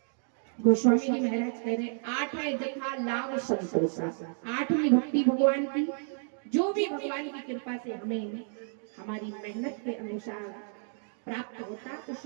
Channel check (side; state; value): left; silent; 57 dB below the other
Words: गोस्वामी जी महाराज कह रहे, आठ है जथा लाभ संतोषा। आठवीं भक्ति भगवान की, जो भी भगवान की कृपा से हमें हमारी मेहनत के अनुसार प्राप्त होता,